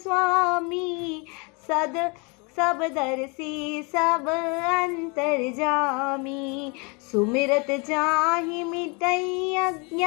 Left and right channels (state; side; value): quieter; right; 31.2 dB